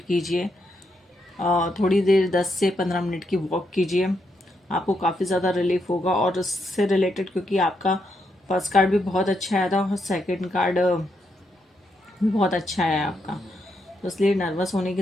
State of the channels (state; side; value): normal; both; correlation 0.80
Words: कीजिए। थोड़ी देर 10 से 15 मिनट की वॉक कीजिए, आपको काफ़ी ज़्यादा रिलीफ होगा। और उससे रिलेटेड क्योंकि आपका फर्स्ट कार्ड भी बहुत अच्छा आया था और सेकंड कार्ड भी बहुत अच्छा है आपका, तो इसलिए नर्वस होने